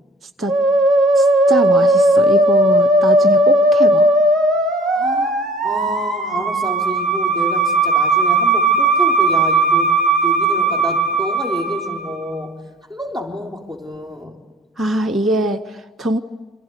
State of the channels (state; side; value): normal; both; correlation 0.49